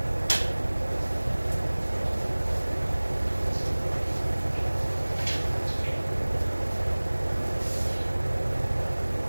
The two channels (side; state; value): both; inverted; correlation -1.00